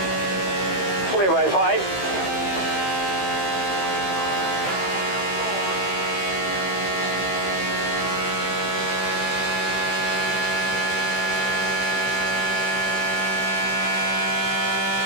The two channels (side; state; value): right; late; 15 ms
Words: Clear by 5.